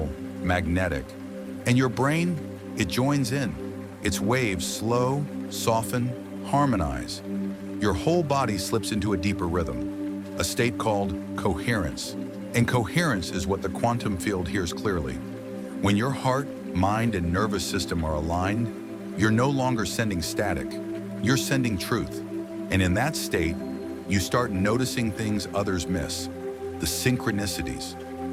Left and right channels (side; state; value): both; identical; correlation 1.00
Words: magnetic, and your brain, it joins in. Its waves slow, soften, harmonize. Your whole body slips into a deeper rhythm, a state called coherence. And coherence is what the quantum field hears clearly. When your heart, mind, and nervous system are aligned, you're no longer sending static, you're sending truth. And in that state, you start noticing things others miss. The synchronicities,